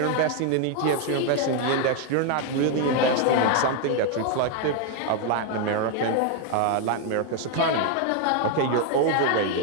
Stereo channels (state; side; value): different; both; correlation 0.01